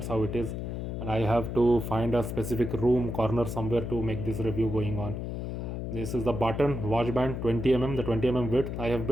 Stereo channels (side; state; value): left; noise; hum, 5 dB below the sound